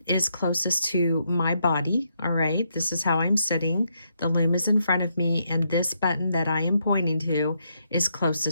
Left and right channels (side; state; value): both; inverted; correlation -0.78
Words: is closest to my body. All right, this is how I'm sitting. The loom is in front of me, and this button that I am pointing to is